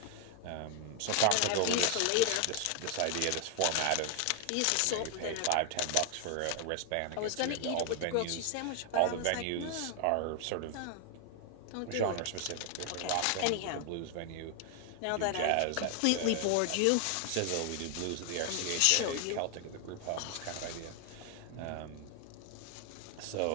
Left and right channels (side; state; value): both; different; correlation 0.00